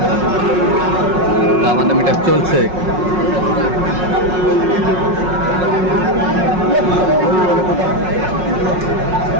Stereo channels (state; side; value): late; left; 5.5 ms